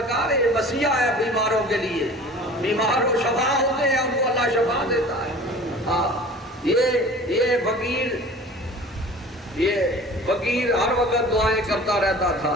یہ وصیہ ہے بیماروں کے لیے، بیمار کو شفا ہوتے ہیں ان کو اللہ شفا دیتا ہے، یہ فقیر ہر وقت دعائیں کرتا رہتا تھا،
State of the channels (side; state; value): both; normal; correlation 0.43